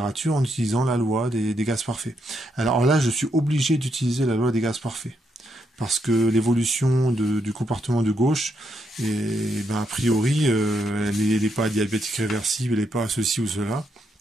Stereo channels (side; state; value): both; normal; correlation 0.79